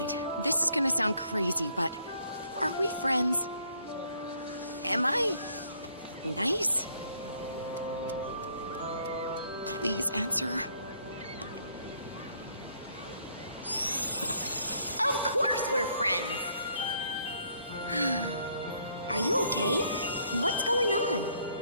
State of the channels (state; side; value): inverted; both; correlation -0.66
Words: this is gonna sound crazy, but are we friends? Am I nice? Please answer. Of course we're friends! Are you okay? What's going on?